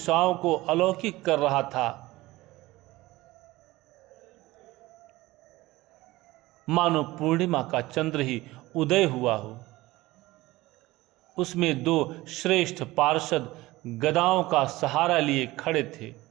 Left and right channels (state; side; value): quieter; left; 18.9 dB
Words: को अलौकिक कर रहा था। मानो पूर्णिमा का चंद्र ही उदय हुआ हो। उसमें दो श्रेष्ठ पार्षद गदाओं का सहारा लिए खड़े थे।